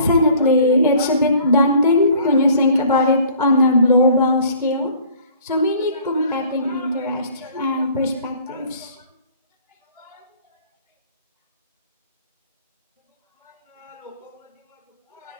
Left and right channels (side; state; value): both; inverted; correlation -0.52